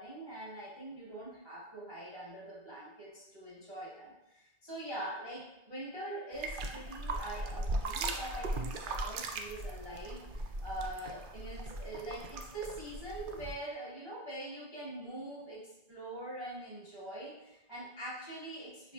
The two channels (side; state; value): left; late; 2.3 ms